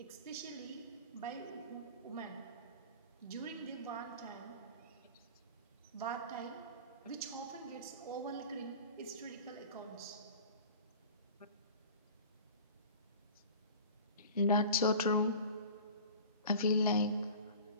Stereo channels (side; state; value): both; inverted; correlation -0.40